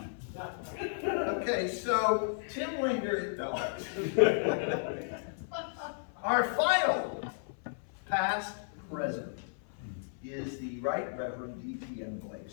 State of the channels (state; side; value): silent; right; 55 dB below the other